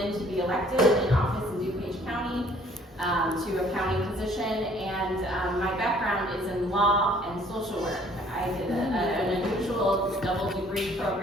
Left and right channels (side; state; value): both; normal; correlation 0.58